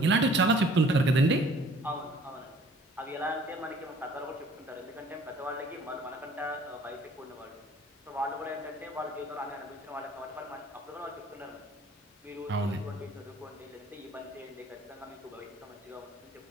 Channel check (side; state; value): both; normal; correlation 0.54